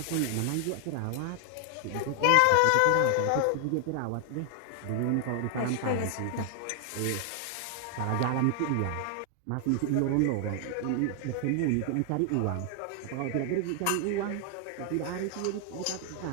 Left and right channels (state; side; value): different; both; correlation 0.00